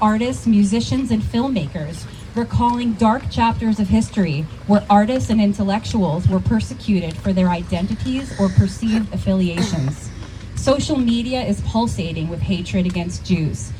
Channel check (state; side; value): identical; both; correlation 1.00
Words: artists, musicians, and filmmakers, recalling dark chapters of history where artists and intellectuals were persecuted for their identities or perceived affiliations. Social media is pulsating with hatred against Jews,